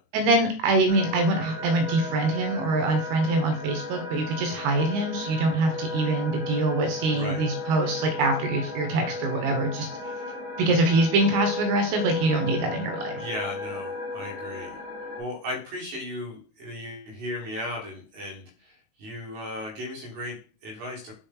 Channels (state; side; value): late; left; 19 ms